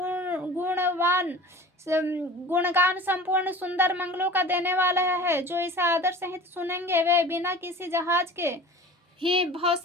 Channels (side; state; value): both; normal; correlation 0.40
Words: गुणगान संपूर्ण सुंदर मंगलों का देने वाला है। जो इसे आदर सहित सुनेंगे वे बिना किसी जहाज के ही